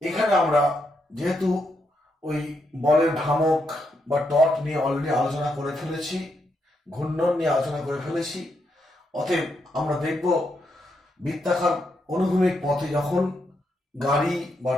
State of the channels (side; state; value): both; normal; correlation 0.80